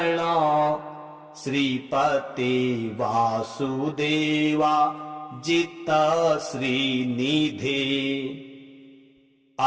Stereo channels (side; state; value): both; identical; correlation 1.00